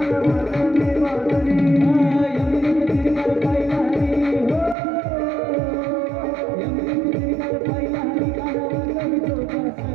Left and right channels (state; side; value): drops out; left; at 4.8 s